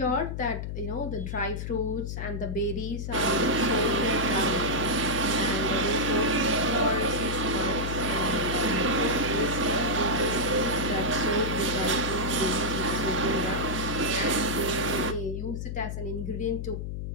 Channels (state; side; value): noise; left; hum, 5 dB below the sound